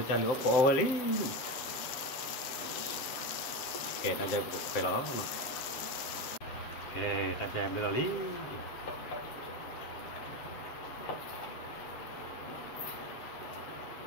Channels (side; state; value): right; late; 7.6 ms